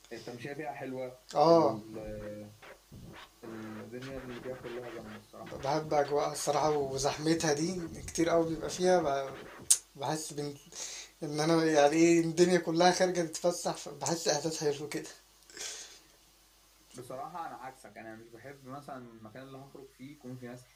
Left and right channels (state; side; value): identical; both; correlation 1.00